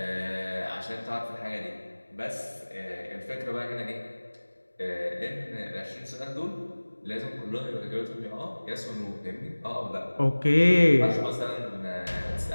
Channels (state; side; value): inverted; both; correlation -1.00